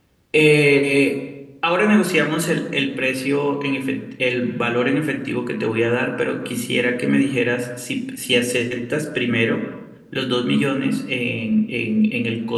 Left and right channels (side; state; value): both; identical; correlation 1.00